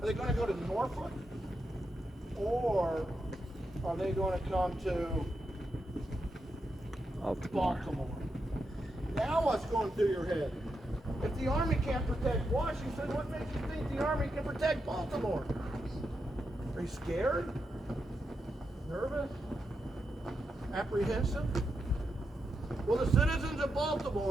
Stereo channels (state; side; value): normal; both; correlation 0.85